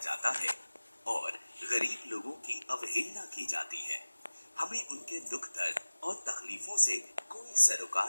है और गरीब लोगों की अवहेलना की जाती है। हमें उनके दुख दर्द और तकलीफों से कोई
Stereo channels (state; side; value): inverted; both; correlation -1.00